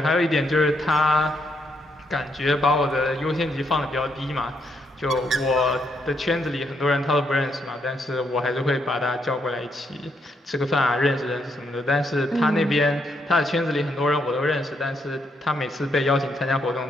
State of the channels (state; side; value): normal; both; correlation 0.76